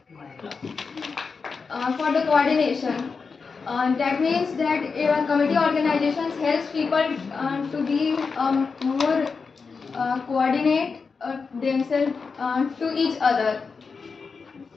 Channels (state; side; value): quieter; right; 5.0 dB